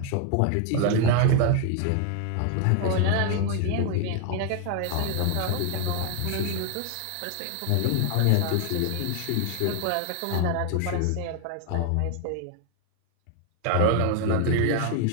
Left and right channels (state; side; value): different; both; correlation 0.00